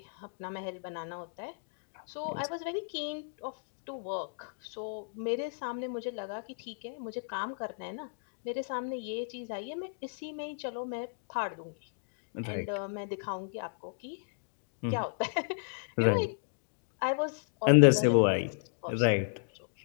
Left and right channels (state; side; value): silent; right; digital silence